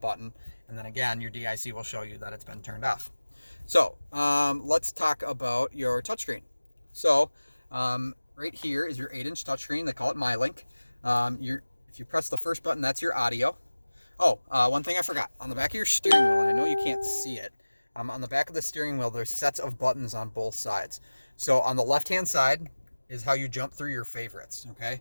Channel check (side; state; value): both; inverted; correlation -1.00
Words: And then again, your DIC will show you that it's been turned off. So let's talk about your touchscreen. So right here is your 8-inch touchscreen. They call it MyLink. If you press the first button, that's your audio. Oh, one thing I forgot. On the back of your steering wheel, and I know you can't see it, on the back of the steering wheel, there's sets of buttons on both sides. So on the left-hand side is how you jump through your favorites, okay?